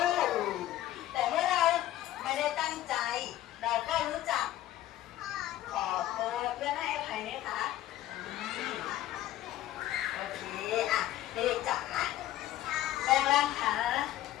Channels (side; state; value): right; quieter; 13.9 dB